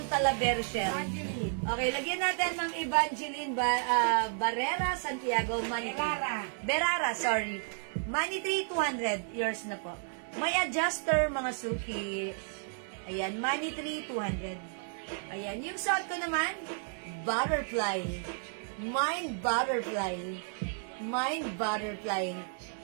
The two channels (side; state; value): left; silent; 56 dB below the other